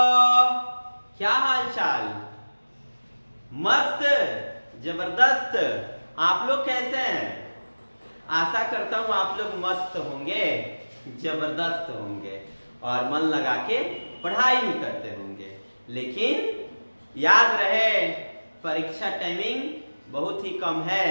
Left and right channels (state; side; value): inverted; both; correlation -1.00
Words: क्या हाल चाल। मस्त, जबरदस्त। आप लोग कैसे हैं? आशा करता हूं आप लोग मस्त होंगे, जबरदस्त होंगे और मन लगा के पढ़ाई भी करते होंगे। लेकिन याद रहे, परीक्षा टाइमिंग बहुत ही कम है,